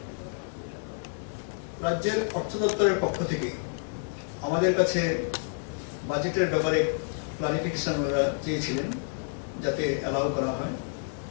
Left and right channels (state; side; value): silent; right; 59 dB below the other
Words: রাজ্যের অর্থ দপ্তরের পক্ষ থেকে আমাদের কাছে বাজেটের ব্যাপারে ক্লারিফিকেশন ওরা চেয়েছিলেন, যাতে অ্যালাউ করা হয়।